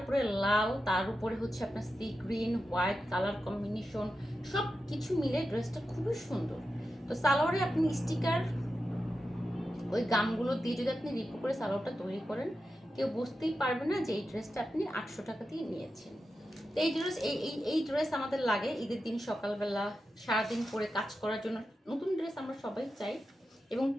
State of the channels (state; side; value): normal; both; correlation 0.90